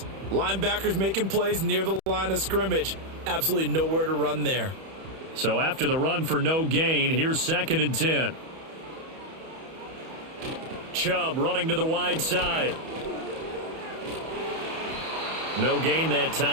linebackers making plays near the line of scrimmage. Absolutely nowhere to run there. So after the run for no gain, here's 2nd and 10. Chubb running to the wide side. No gain that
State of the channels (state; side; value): late; left; 31 ms